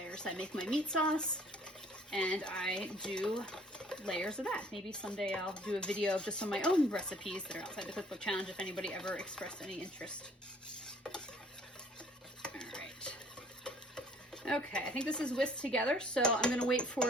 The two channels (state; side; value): normal; both; correlation 0.57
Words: I make my meat sauce, and I do layers of that. Maybe someday I'll do a video of just some of my own recipes that are outside the cookbook challenge if anybody ever expressed any interest. All right. Okay, I think this is whisked together, so I'm gonna wait